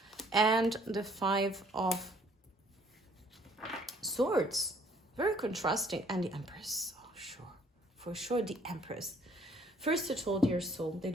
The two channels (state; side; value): normal; both; correlation 0.60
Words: and the 5 of Swords. Very contrasting. And the Empress, oh sure, for sure the Empress. First of all, dear soul, they